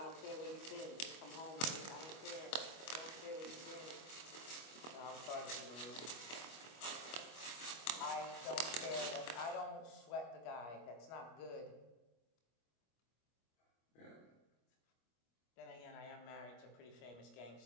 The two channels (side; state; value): right; late; 25 ms